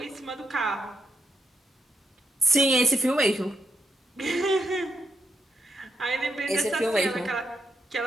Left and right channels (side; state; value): both; normal; correlation 0.81